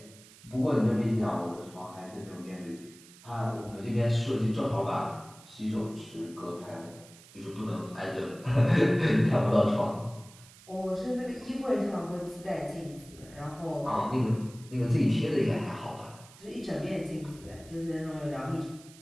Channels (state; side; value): noise; right; hiss, 22 dB below the sound